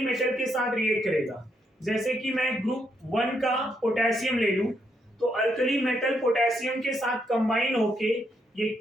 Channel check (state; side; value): normal; both; correlation 0.76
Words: के साथ रिएक्ट करेगा, जैसे कि मैं ग्रुप 1 का पोटेशियम ले लूं, तो अल्कली मेटल पोटेशियम के साथ कंबाइन होके ये